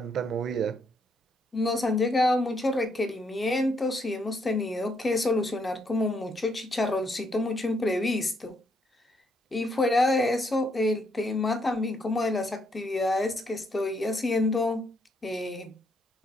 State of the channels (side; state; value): both; normal; correlation 0.74